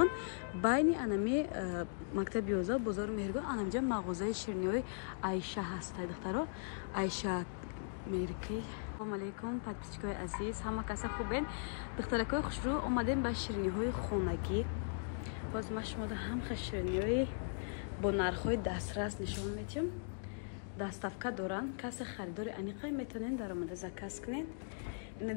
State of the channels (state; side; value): silent; right; digital silence